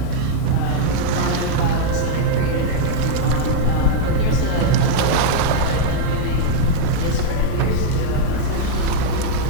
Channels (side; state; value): both; different; correlation -0.01